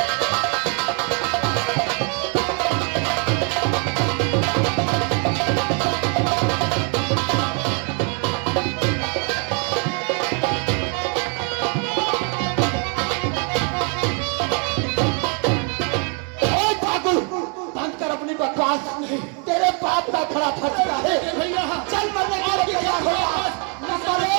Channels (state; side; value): quieter; left; 38.0 dB